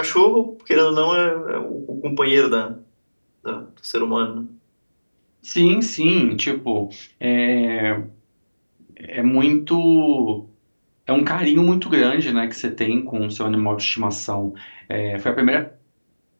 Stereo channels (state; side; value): inverted; both; correlation -1.00